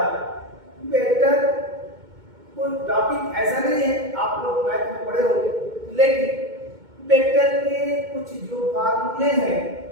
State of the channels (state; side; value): late; left; 2.2 ms